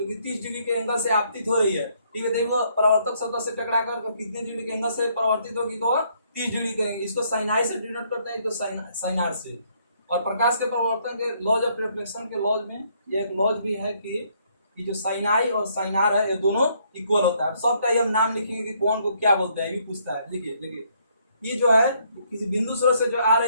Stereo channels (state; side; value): inverted; both; correlation -0.69